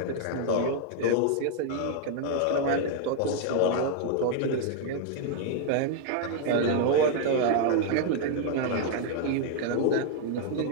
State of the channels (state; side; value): different; both; correlation 0.00